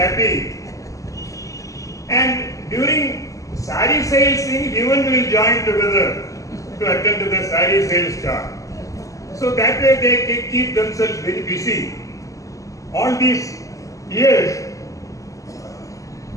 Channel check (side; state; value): right; late; 0.16 ms